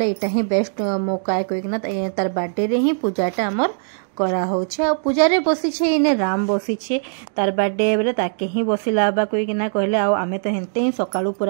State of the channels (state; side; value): silent; left; digital silence